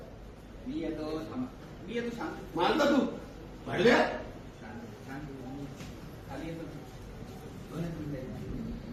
मी येतो थांबा. मी येतो शांत मानता तू भाडव्या शांत खाली येतो 2 मिनिटं.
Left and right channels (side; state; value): both; identical; correlation 1.00